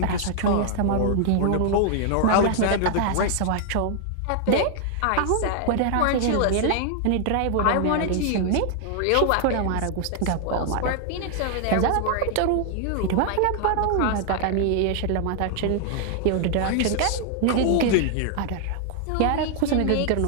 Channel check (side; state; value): both; different; correlation 0.00